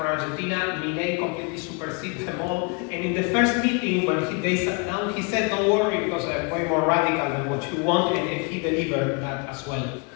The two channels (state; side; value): quieter; right; 32.9 dB